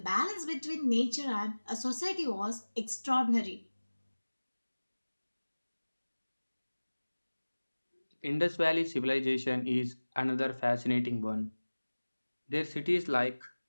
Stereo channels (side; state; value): both; inverted; correlation -1.00